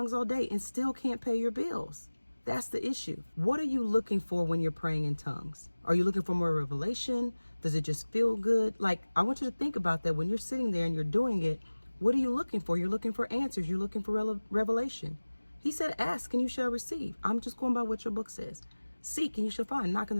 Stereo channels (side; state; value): both; inverted; correlation -1.00